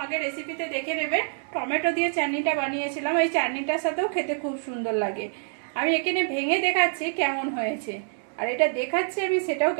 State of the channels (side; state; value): left; silent; digital silence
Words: আগে রেসিপিতে দেখে নেবে। টমেটো দিয়ে চাটনিটা বানিয়েছিলাম, এই চাটনিটার সাথেও খেতে খুব সুন্দর লাগে। আমি এখানে ভেঙে দেখাচ্ছি কেমন হয়েছে, আর এটা দেখাচ্ছি আমি সেটাও